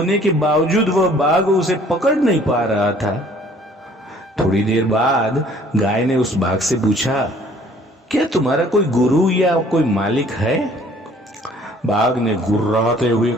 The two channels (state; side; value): normal; both; correlation 0.56